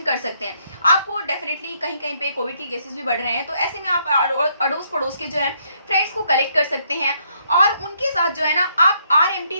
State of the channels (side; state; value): both; inverted; correlation -0.72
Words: कर सकते हैं। आपको डेफिनेटली कहीं कहीं पे कोविड के केसेस भी बढ़ रहे हैं तो ऐसे में आप अड़ोस पड़ोस के जो है फ्रेंड्स को कलेक्ट कर सकते हैं और उनके साथ जो है ना आप RMT